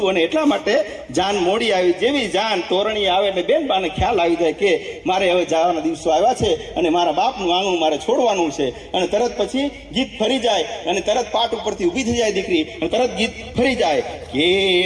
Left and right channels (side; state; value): both; identical; correlation 1.00